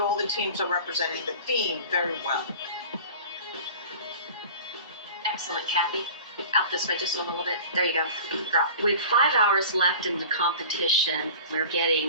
the teams are representing the theme very well. Excellent, Kathy. Out this way just a little bit. There you go. Drop. With 5 hours left in the competition, we're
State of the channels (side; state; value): both; inverted; correlation -0.40